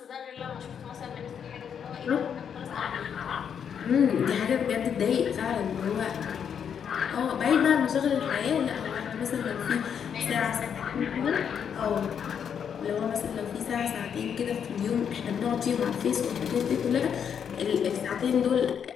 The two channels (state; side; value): quieter; right; 7.8 dB